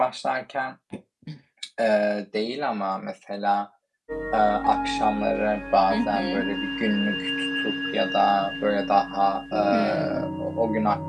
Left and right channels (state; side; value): identical; both; correlation 1.00